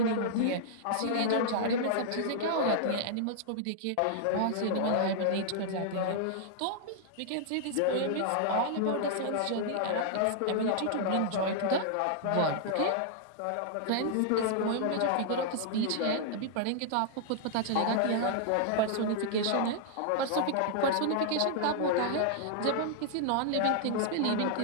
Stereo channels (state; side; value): different; both; correlation -0.01